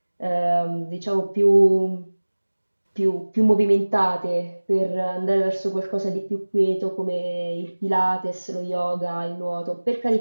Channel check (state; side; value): inverted; both; correlation -1.00